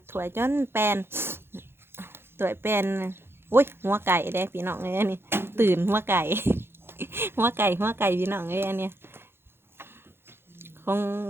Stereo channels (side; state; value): left; late; 0.11 ms